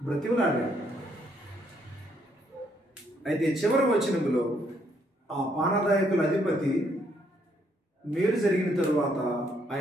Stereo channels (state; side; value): normal; both; correlation 0.71